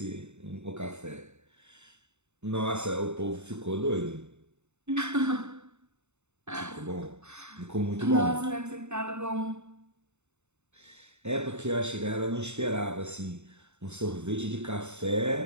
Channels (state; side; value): late; left; 0.82 ms